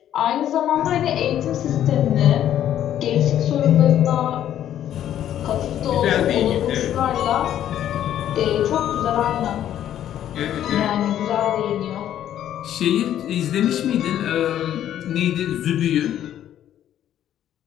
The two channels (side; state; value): right; quieter; 11.1 dB